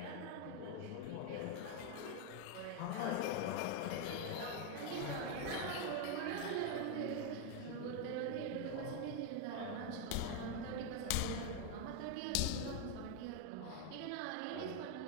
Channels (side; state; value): both; different; correlation 0.01